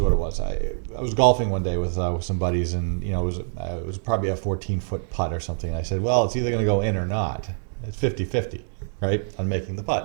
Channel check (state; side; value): silent; left; digital silence